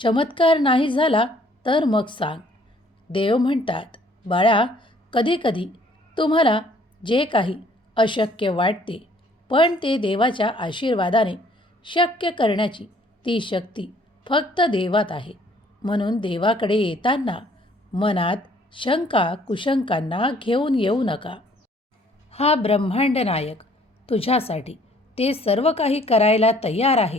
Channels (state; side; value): normal; both; correlation 0.60